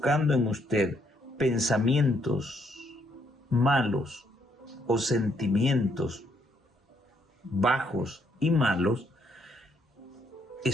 en usted pensamientos malos o sentimientos bajos y malos,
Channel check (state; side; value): normal; both; correlation 0.72